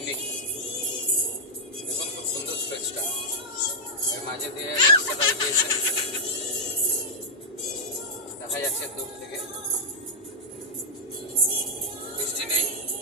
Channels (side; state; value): both; normal; correlation -0.08